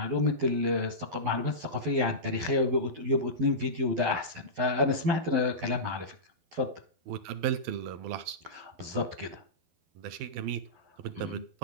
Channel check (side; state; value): left; late; 12 ms